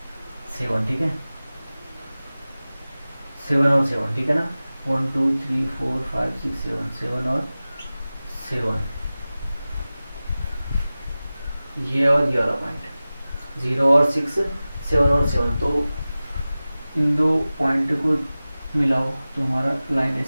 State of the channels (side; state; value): both; inverted; correlation -0.97